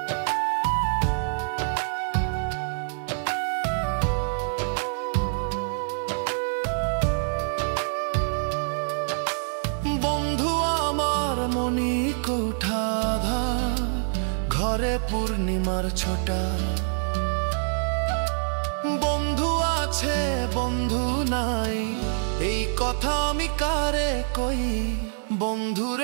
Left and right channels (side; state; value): left; silent; 61 dB below the other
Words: বন্ধু আমার মনি কোঠাধা ঘরে পূর্ণিমার ছোটা বন্ধু আছে বন্ধু নাই এই কথা আমি কারে কই